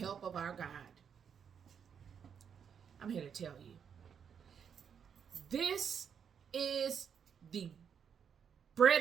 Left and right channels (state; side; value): quieter; left; 7.4 dB